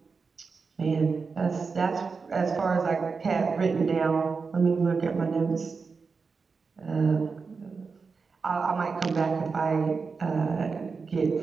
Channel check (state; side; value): quieter; left; 4.9 dB